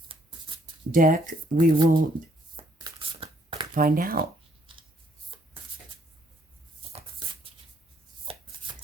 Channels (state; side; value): normal; both; correlation 0.68